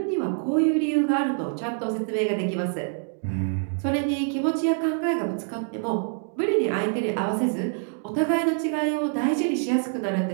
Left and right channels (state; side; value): silent; left; 58 dB below the other